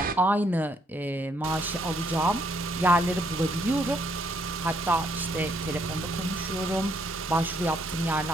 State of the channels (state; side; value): normal; both; correlation 0.71